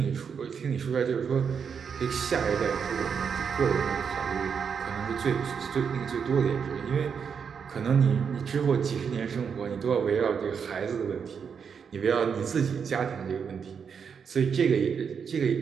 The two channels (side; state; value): left; quieter; 6.6 dB